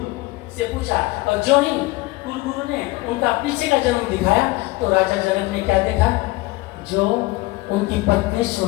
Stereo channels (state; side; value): quieter; right; 20.8 dB